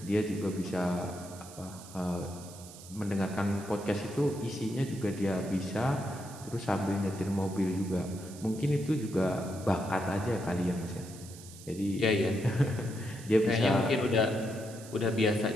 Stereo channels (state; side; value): noise; right; hiss, 17 dB below the sound